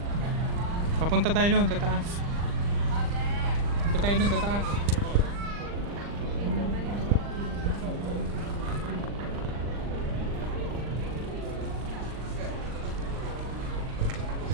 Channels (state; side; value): late; left; 40 ms